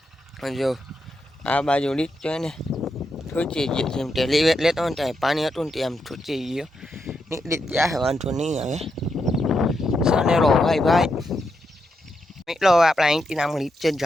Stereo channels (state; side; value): normal; both; correlation 0.83